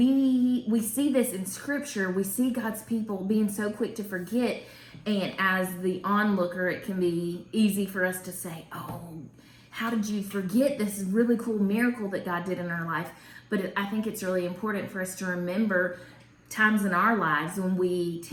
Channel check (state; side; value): identical; both; correlation 1.00